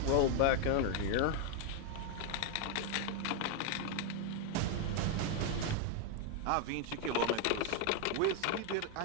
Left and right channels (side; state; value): both; different; correlation 0.01